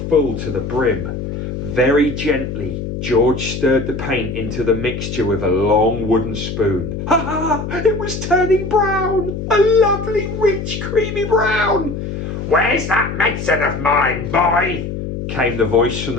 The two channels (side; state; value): left; noise; hum, 6 dB below the sound